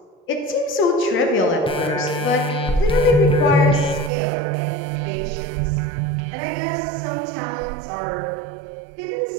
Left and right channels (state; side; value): drops out; left; at 4.1 s